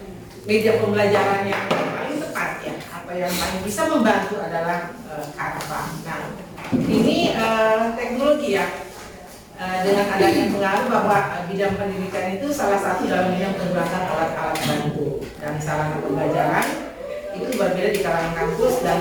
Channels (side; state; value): both; identical; correlation 1.00